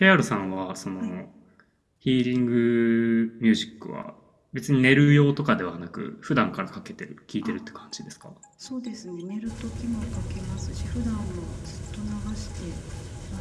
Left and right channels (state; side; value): identical; both; correlation 1.00